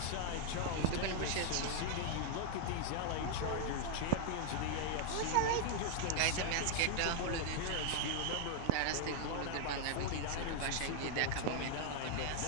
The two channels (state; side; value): different; both; correlation -0.01